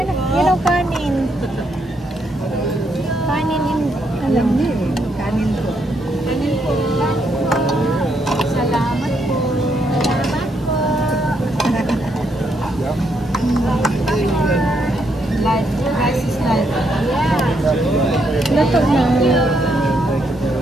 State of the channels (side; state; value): both; normal; correlation 0.76